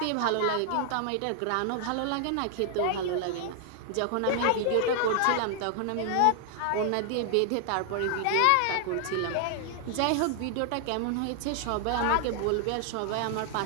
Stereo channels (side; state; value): both; different; correlation 0.00